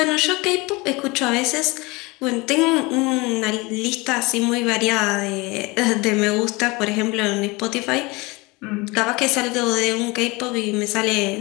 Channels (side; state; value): right; quieter; 24.5 dB